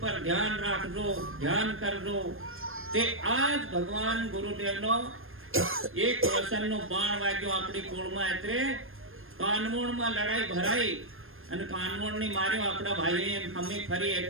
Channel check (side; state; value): left; late; 0.60 ms